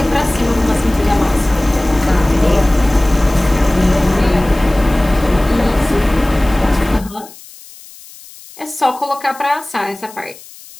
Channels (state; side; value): noise; left; hiss, 20 dB below the sound